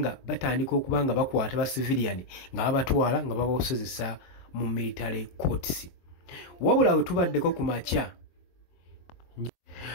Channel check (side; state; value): right; late; 23 ms